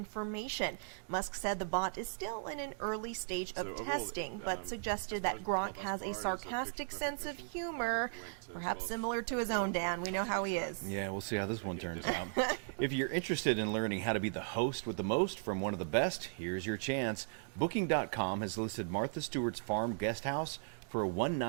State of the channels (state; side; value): silent; left; digital silence